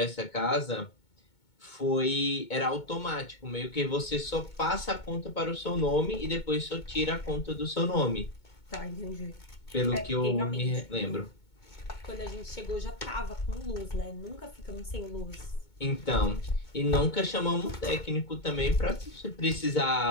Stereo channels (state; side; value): late; right; 2.2 ms